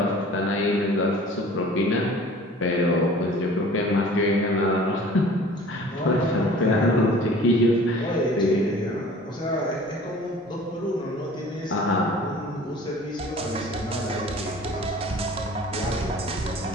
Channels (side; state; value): both; normal; correlation 0.46